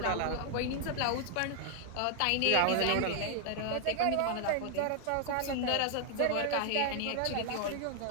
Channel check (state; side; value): different; both; correlation 0.00